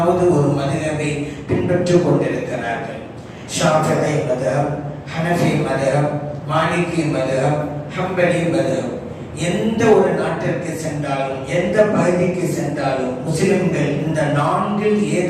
ஒரு மதுஹபை பின்பற்றிக் கொண்டிருக்கிறார்கள். ஷாஃபிஈ மதுஹப், ஹனஃபி மதுஹப், மாலிகி மதுஹப், ஹம்பலி மதுஹப். எந்த ஒரு நாட்டிற்கு சென்றாலும் எந்த பகுதிக்கு சென்றாலும் முஸ்லிம்கள் இந்த 4ல்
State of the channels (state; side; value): identical; both; correlation 1.00